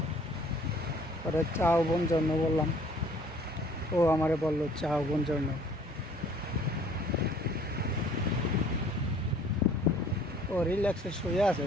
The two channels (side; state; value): both; normal; correlation 0.55